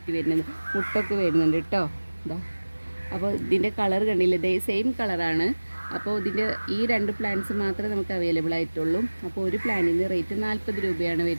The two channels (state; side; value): inverted; both; correlation -1.00